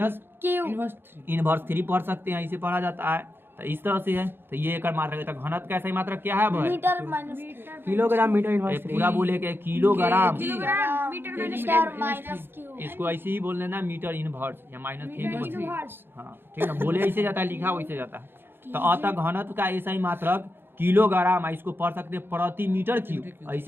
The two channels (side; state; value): left; late; 0.10 ms